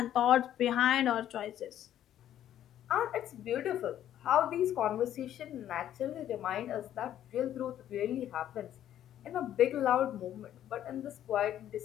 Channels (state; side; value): quieter; right; 11.3 dB